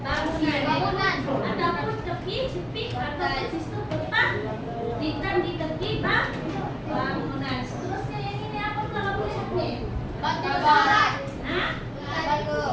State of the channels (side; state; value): both; identical; correlation 1.00